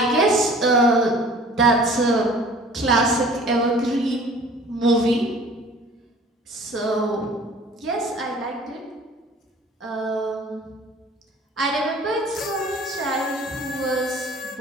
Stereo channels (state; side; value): normal; both; correlation 0.49